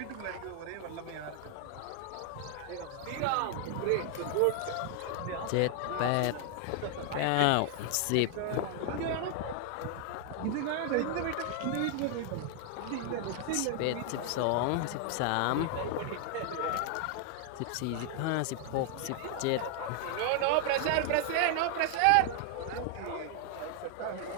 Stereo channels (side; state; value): both; different; correlation 0.00